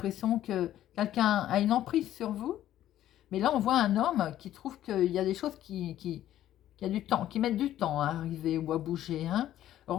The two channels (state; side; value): quieter; right; 12.5 dB